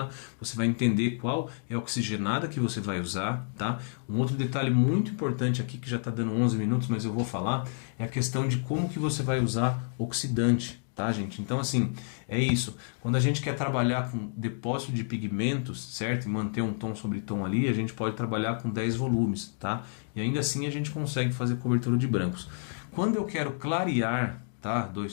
você vai entender qual é a oxigenada que você vai usar, tá? Um outro detalhe muito importante aqui, que já está dando 11 minutos, mas eu vou falar, é a questão de como que você vai usar oxidante, tá, gente? Então, assim, é isso. Quando a gente quer trabalhar com depósito de pigmentos, certo? E manter um tom sobre tom ali, a gente pode trabalhar com 10 volumes, tá? E ainda assim a gente consegue fazer cobertura de brancos. Quando eu quero clarear, tá?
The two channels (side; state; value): right; silent; digital silence